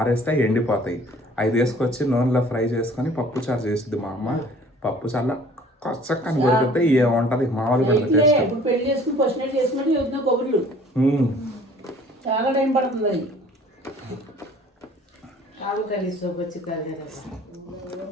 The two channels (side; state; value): both; normal; correlation 0.52